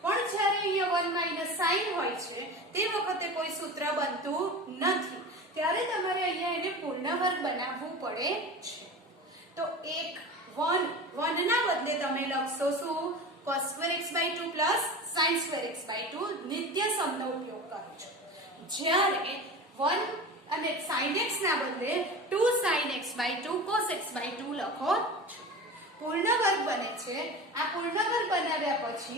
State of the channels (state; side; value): normal; both; correlation 0.31